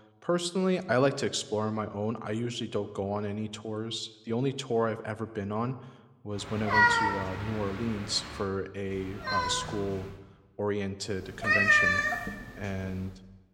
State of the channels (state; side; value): identical; both; correlation 1.00